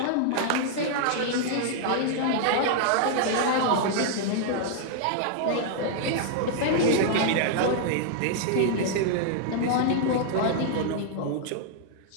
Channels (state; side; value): different; both; correlation -0.01